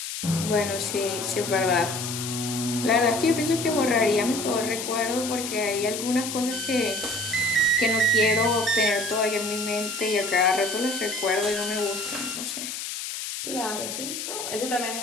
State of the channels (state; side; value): noise; left; hiss, 6 dB below the sound